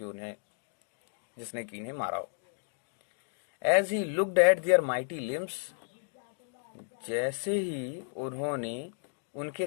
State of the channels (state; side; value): silent; right; digital silence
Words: उन्हें, जिसने कि इन्हें मारा हो। As he looked at their mighty limbs, जैसे ही उन्होंने उनके